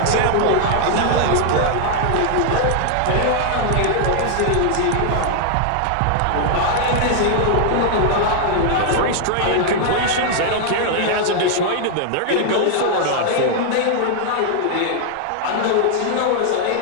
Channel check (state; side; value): different; both; correlation 0.00